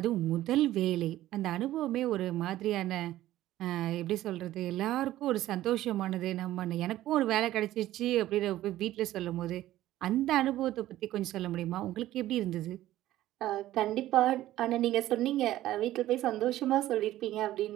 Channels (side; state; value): left; quieter; 14.5 dB